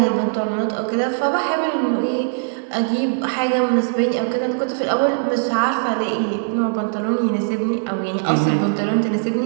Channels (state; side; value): silent; left; digital silence